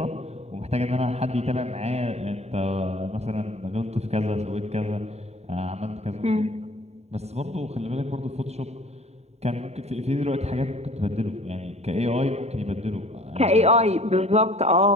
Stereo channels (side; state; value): left; late; 0.31 ms